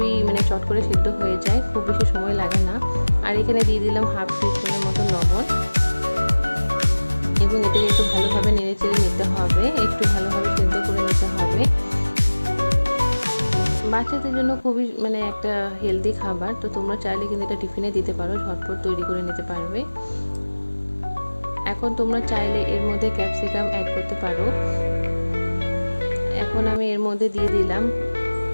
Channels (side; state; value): both; inverted; correlation -1.00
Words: চট করে সিদ্ধ হয়ে যায়, খুব বেশি সময় লাগে না। আর এখানে দিয়ে দিলাম হাফ টিস্পুনের মতো লবণ এবং এটাকে একটু ভালোভাবে নেড়ে চেড়ে নিতে হবে, একটু ভালোভাবে সেদ্ধ করে নিতে হবে। বাচ্চাদের জন্য খুবই একটা হেলদি খাবার। তো তোমরা চাইলে কিন্তু এটা টিফিনে দিতে পারো, ঝটপট তৈরি করে নিতে পারবে। এখন তোমরা চাইলে এর মধ্যে ক্যাপসিকাম অ্যাড করতে পারো। এখন আমি এর মধ্যে দিয়ে দিলাম